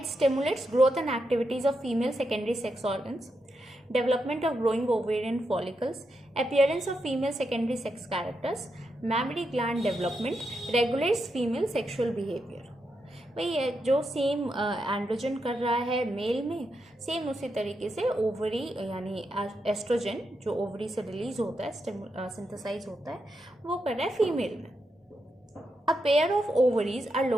stimulates growth and activities of female secondary sex organs, development of growing ovarian follicles, appearance of female secondary sex characters, mammary gland development, regulates female sexual behavior। भाई जो सेम एंड्रोजन कर रहा है मेल में, सेम उसी तरीके से ओवरी यानी एस्ट्रोजन जो ओवरी से रिलीज होता है, सिंथेसाइज होता है, वो कर रहा है फीमेल में। A pair of ovaries are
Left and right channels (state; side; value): normal; both; correlation 0.84